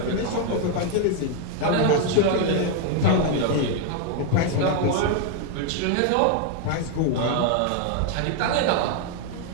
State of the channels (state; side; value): different; both; correlation 0.00